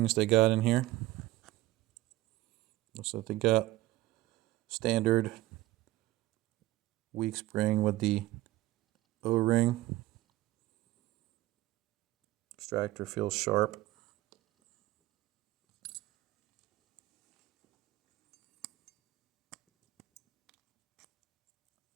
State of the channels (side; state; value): left; quieter; 16.9 dB